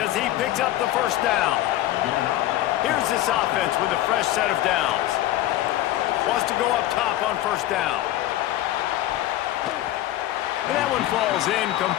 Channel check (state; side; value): quieter; right; 14.3 dB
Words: as he picks up the first down. Here's this offense with a fresh set of downs. Wants to go up top on first down. And that one falls